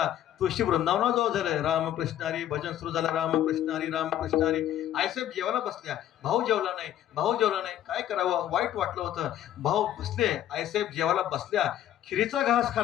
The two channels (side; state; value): right; quieter; 11.8 dB